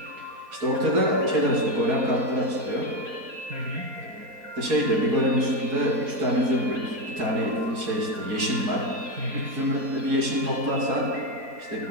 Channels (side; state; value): left; late; 4.2 ms